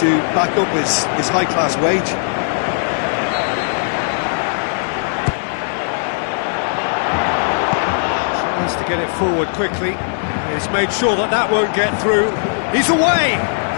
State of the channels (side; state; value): right; silent; digital silence